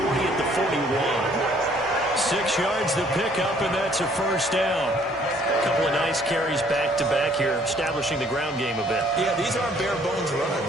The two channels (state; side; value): normal; both; correlation 0.61